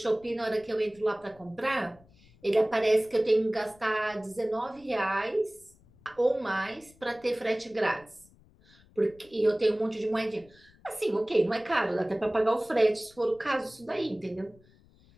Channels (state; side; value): noise; left; rumble, 28 dB below the sound